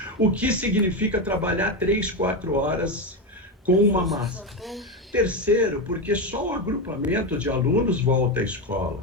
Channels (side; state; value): both; normal; correlation 0.12